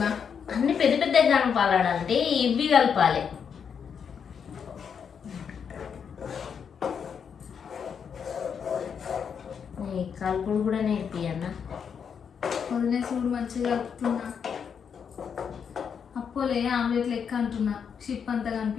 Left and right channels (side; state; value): right; quieter; 7.0 dB